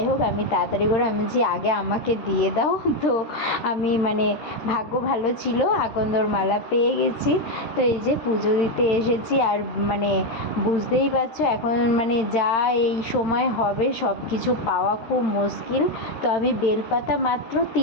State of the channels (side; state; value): right; late; 13 ms